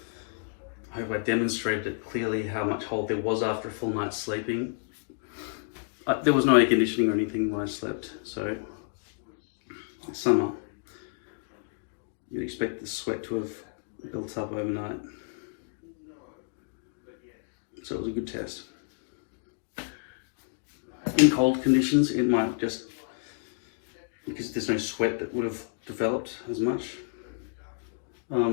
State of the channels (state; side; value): silent; right; digital silence